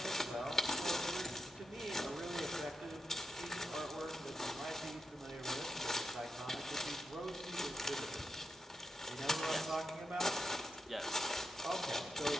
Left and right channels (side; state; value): both; normal; correlation 0.87